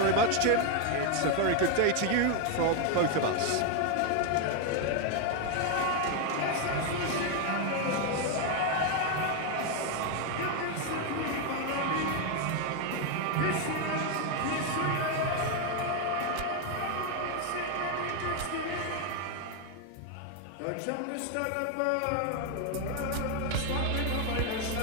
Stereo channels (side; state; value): both; different; correlation 0.01